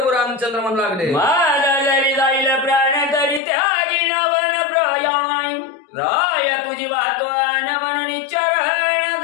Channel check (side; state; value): right; drops out; at 3.4 s